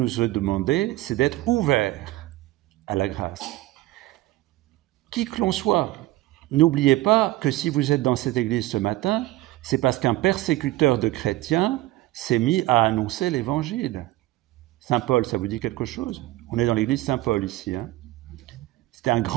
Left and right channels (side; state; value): left; quieter; 17.5 dB